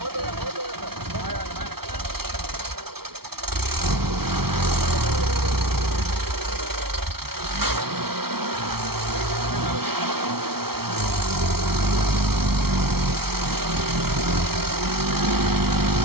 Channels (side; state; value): left; late; 0.95 ms